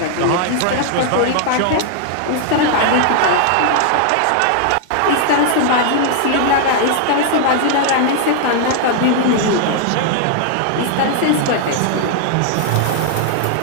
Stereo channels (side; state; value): both; different; correlation -0.01